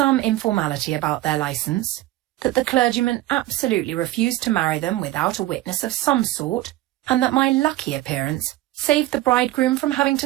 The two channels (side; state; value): left; quieter; 16.1 dB